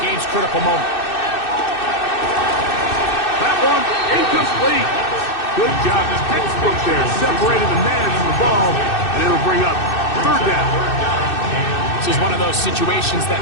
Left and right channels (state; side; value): late; right; 2.6 ms